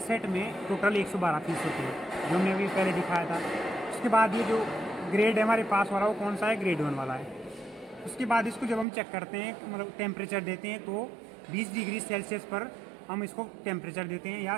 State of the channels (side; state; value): left; drops out; at 8.8 s